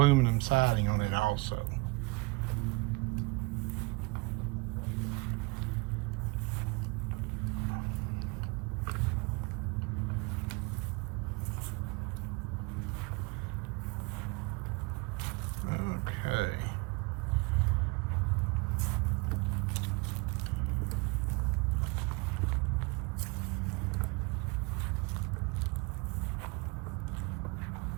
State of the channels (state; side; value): quieter; left; 26.1 dB